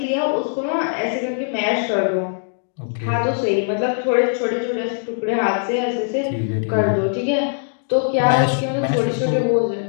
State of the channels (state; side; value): silent; right; digital silence